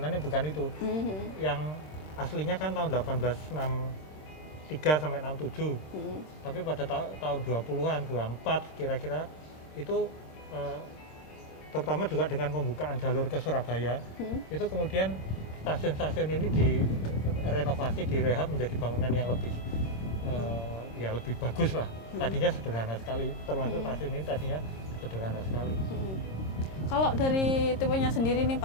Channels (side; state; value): right; late; 26 ms